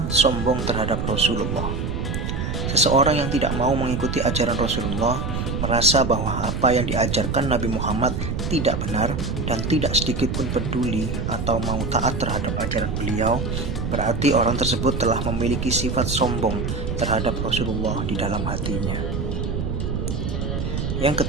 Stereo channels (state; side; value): noise; right; rumble, 2 dB below the sound